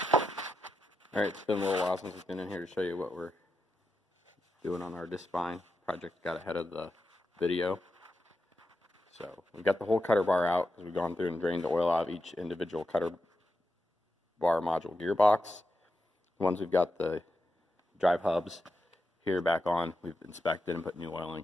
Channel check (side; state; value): both; normal; correlation 0.87